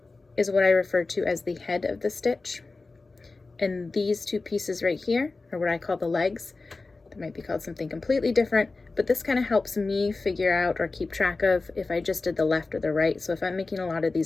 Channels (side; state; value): right; quieter; 3.7 dB